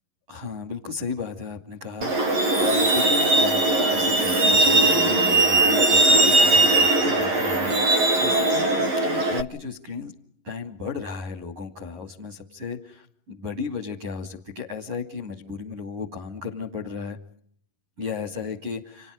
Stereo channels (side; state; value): left; late; 11 ms